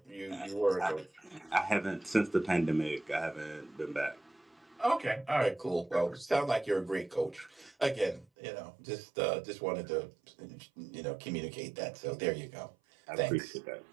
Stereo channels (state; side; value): drops out; left; at 8.2 s